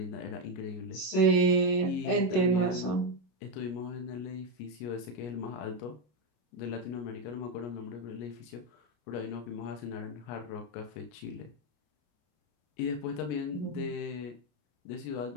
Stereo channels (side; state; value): right; late; 33 ms